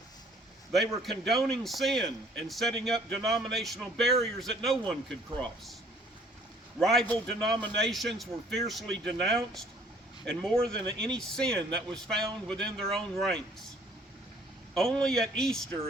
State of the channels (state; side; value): normal; both; correlation 0.58